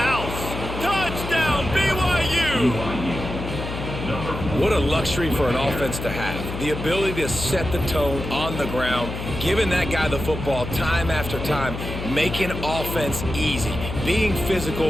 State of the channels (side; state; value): left; noise; hum, 7 dB below the sound